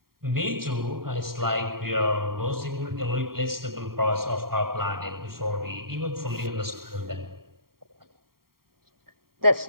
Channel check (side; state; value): left; late; 0.93 ms